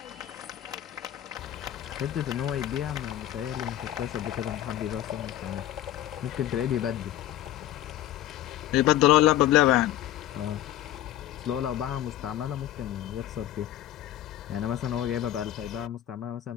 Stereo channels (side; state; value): right; quieter; 12.8 dB